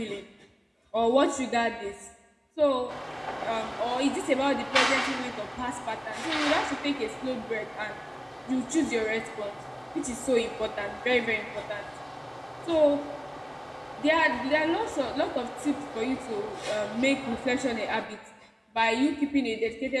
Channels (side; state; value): both; identical; correlation 1.00